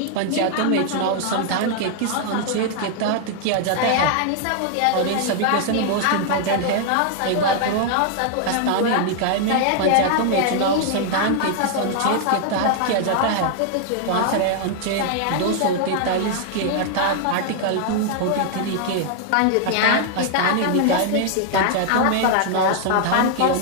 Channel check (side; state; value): both; different; correlation 0.00